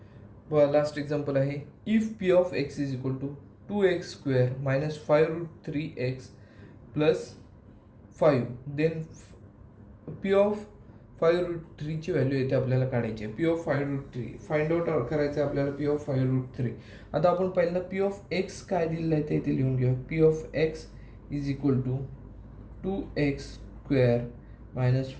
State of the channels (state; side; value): identical; both; correlation 1.00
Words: बघा लास्ट एक्झाम्पल आहे, if P of X is equal to 2x² minus 5√3x plus 5, then P of 5√3 ची व्हॅल्यू येते आपल्याला काढायची आहे. पी ऑफ 5√3 फाइंड आउट करायचं आहे आपल्याला. P of 5√3. आता आपण पहिल्यांदा पी ऑफ एक्स काय दिलेलं आहे ते इथे लिहून घेऊ. P of X is equal to 2x² minus